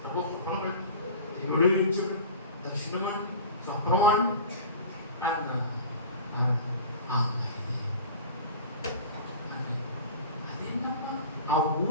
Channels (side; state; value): both; inverted; correlation -0.37